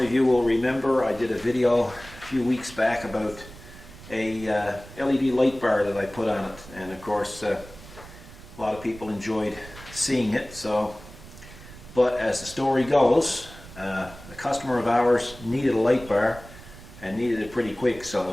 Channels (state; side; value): noise; right; rumble, 18 dB below the sound